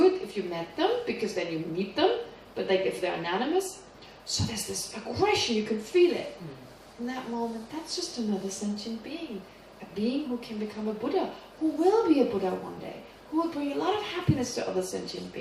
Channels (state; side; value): identical; both; correlation 1.00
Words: it if you met them, because then you meet them, but like if they're anonymous. So there's this aggression, you can feel it. In that moment, that's just another sentient being. A being who can become a Buddha, who will be a Buddha one day, who will bring a lot of happiness to other sentient